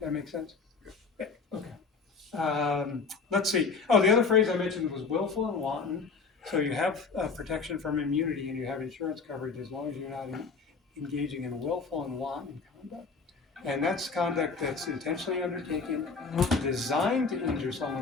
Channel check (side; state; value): right; quieter; 4.7 dB